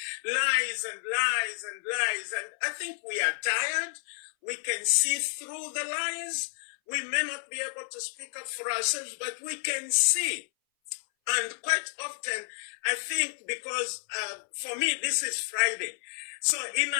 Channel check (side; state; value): right; silent; 58 dB below the other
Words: lies and lies and lies. And I think we are tired. We can see through the lies. We may not be able to speak up for ourselves, but we can see. And quite often, I think because for me, this is Friday. So in